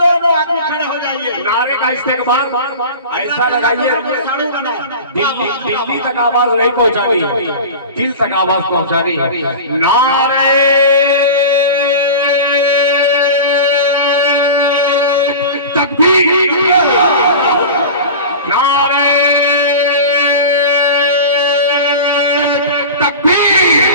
दोनों आदमी खड़े हो जाइए। नारे का इस्तेमाल ऐसा लगाइए, दिल्ली तक आवाज नहीं पहुंचानी, दिल तक आवाज पहुंचानी। नारे तकबीर, नारे तकबीर,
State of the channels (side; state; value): both; inverted; correlation -0.32